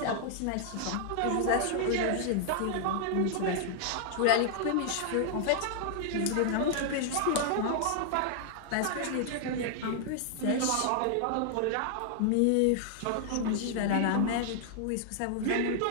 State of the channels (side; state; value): both; different; correlation -0.01